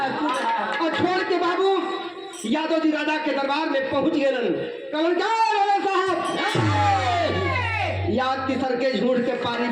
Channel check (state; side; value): identical; both; correlation 1.00